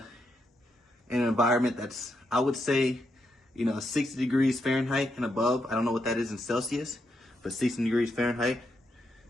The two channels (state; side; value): normal; both; correlation 0.82